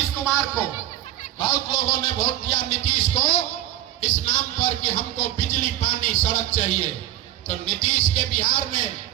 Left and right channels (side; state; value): left; quieter; 13.7 dB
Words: कुमार को, बहुत लोगों ने वोट दिया नीतीश को इस नाम पर कि हमको बिजली पानी सड़क चाहिए। तो नीतीश के बिहार में